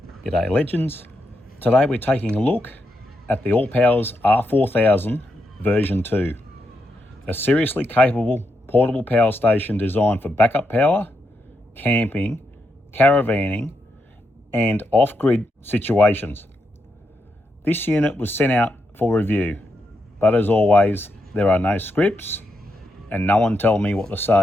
G'day legends. Today we're taking a look at the ALLPOWERS R4000 version 2. A seriously capable portable power station designed for backup power, camping, caravanning and off-grid situations. This unit was sent out for review, but as always there are no scripts and no one tell me what to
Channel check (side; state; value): both; normal; correlation 0.83